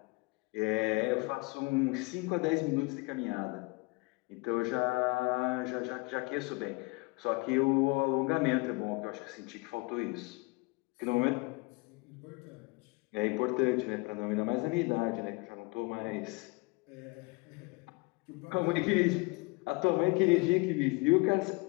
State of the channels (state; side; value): quieter; right; 27.0 dB